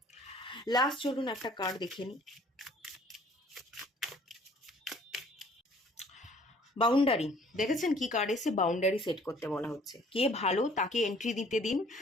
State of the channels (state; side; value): normal; both; correlation 0.56